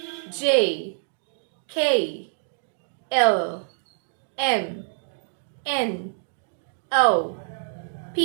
J, K, L, M, N, O,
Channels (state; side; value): silent; left; digital silence